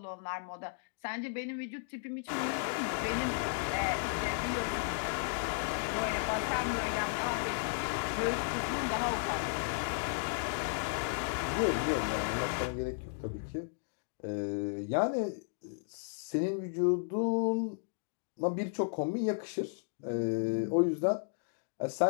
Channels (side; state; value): right; silent; digital silence